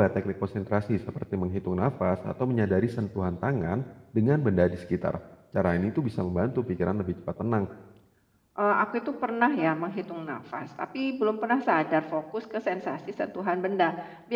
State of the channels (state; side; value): identical; both; correlation 1.00